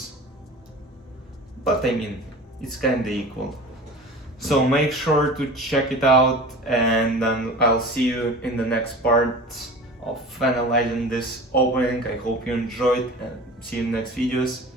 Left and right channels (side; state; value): both; normal; correlation 0.37